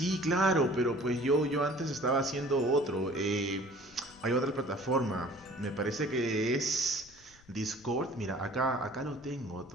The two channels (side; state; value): left; noise; rumble, 26 dB below the sound